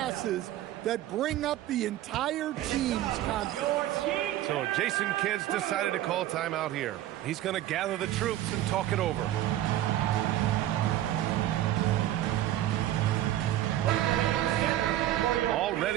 that bring up the entire team's confidence. So Jason Kidd's decided to call timeout here. He's going to gather the troops and talk it over.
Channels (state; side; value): quieter; left; 13.5 dB